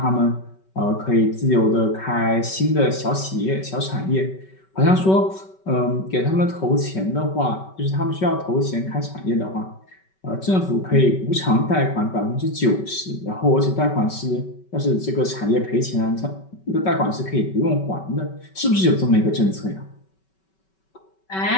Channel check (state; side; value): late; right; 5.3 ms